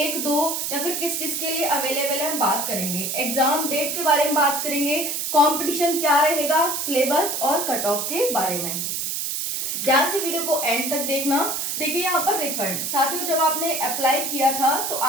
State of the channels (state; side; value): noise; right; hiss, 2 dB below the sound